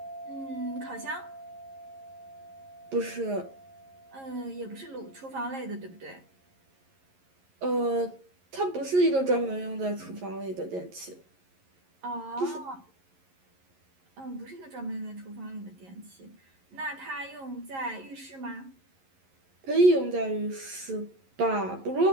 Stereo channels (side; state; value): left; late; 11 ms